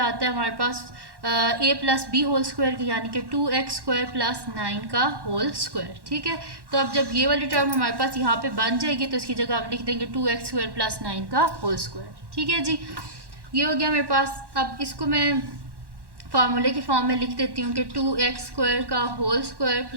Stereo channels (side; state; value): left; late; 1.1 ms